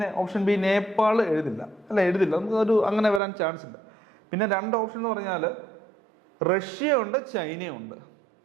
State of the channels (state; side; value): drops out; left; at 3.2 s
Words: ഓപ്ഷൻ ബി നേപ്പാൾ എഴുതില്ല നമുക്ക് അങ്ങനെ വരാൻ ചാൻസ് ഇല്ല. പിന്നെ 2 ഓപ്ഷൻ എന്ന് പറഞ്ഞാൽ റഷ്യ ഉണ്ട്, ചൈനയുണ്ട്.